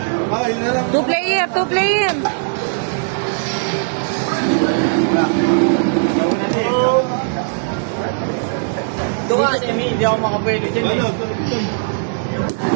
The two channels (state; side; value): silent; left; digital silence